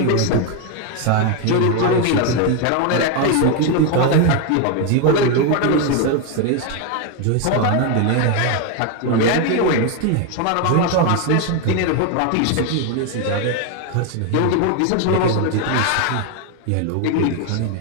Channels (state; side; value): different; both; correlation 0.01